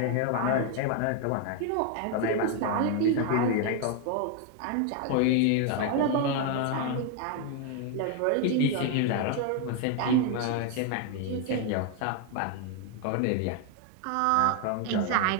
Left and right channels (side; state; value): both; different; correlation 0.01